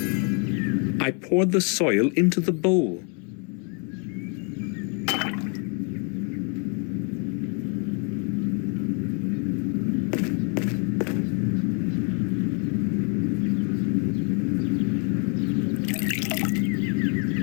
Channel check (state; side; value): quieter; right; 37.6 dB